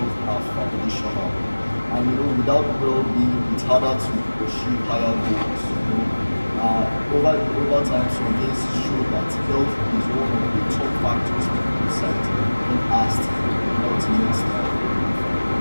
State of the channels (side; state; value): both; inverted; correlation -1.00